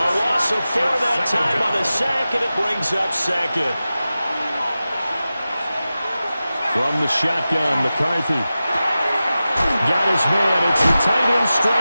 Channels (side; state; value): both; inverted; correlation -0.94